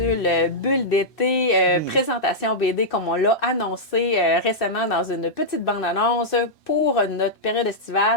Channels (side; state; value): both; normal; correlation -0.09